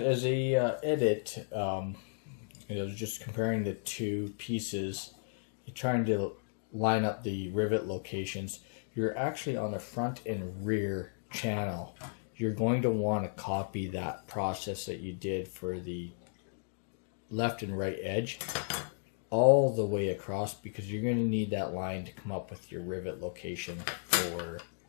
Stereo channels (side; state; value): right; silent; digital silence